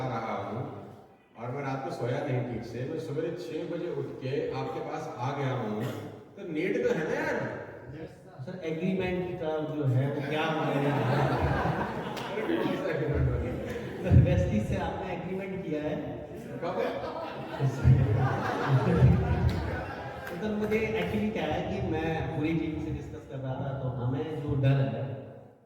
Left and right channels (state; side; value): identical; both; correlation 1.00